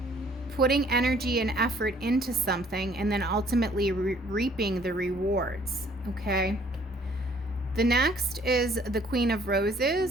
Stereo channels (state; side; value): normal; both; correlation 0.60